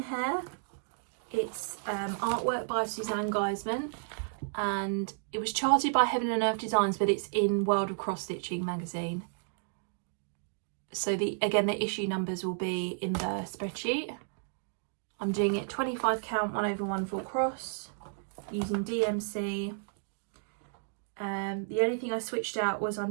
It's artwork by Suzanne Geisman, and it was charted by Heaven and Earth Designs, but it's in World of Cross Stitching magazine. So again, the issue numbers will be in the spreadsheet. I'm doing it 25 count 1/1 full cross using DMC. The only thing I switched out was I'm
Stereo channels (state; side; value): silent; left; digital silence